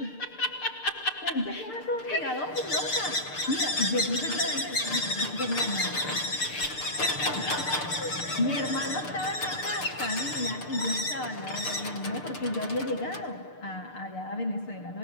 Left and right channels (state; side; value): late; right; 6.7 ms